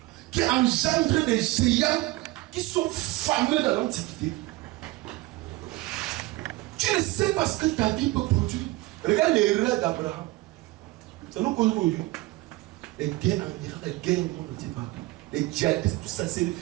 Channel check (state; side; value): quieter; left; 19.8 dB